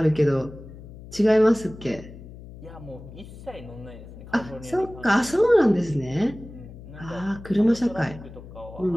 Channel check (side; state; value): left; noise; hum, 16 dB below the sound